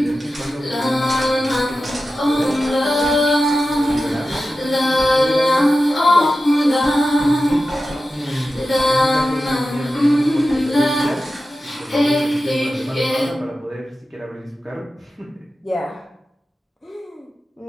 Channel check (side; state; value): both; normal; correlation 0.93